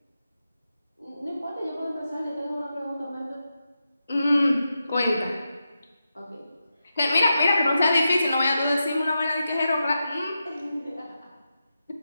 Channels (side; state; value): both; inverted; correlation -0.89